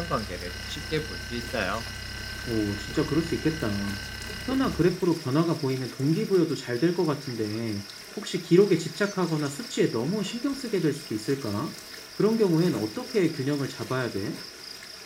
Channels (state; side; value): identical; both; correlation 1.00